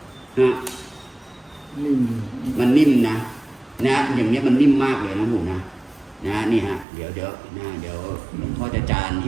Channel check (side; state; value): left; drops out; at 6.9 s